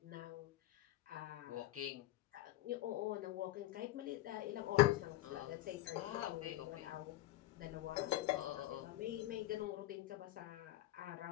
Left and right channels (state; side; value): quieter; right; 15.8 dB